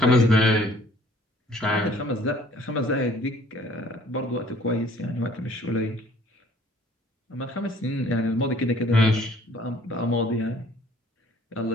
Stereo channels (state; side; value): normal; both; correlation 0.56